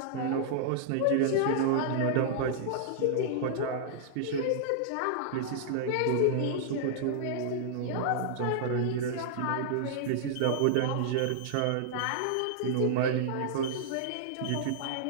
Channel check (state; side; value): different; both; correlation -0.02